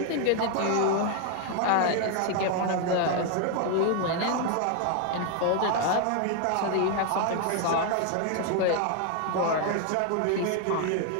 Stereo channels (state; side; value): different; both; correlation 0.00